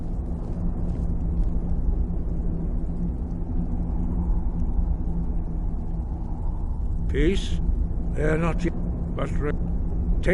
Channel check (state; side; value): identical; both; correlation 1.00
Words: Peace? They're not yet, but